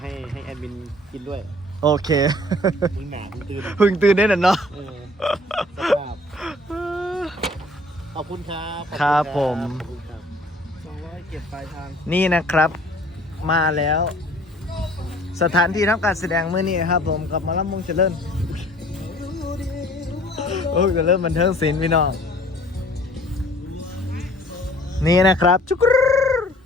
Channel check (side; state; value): both; normal; correlation 0.53